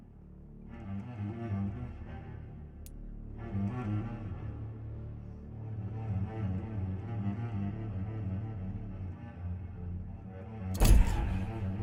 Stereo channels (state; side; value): identical; both; correlation 1.00